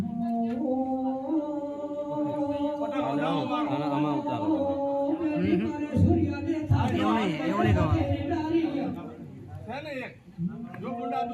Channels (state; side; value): identical; both; correlation 1.00